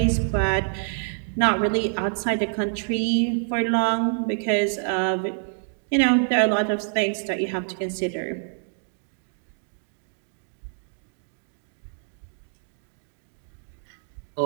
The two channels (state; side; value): silent; left; 61 dB below the other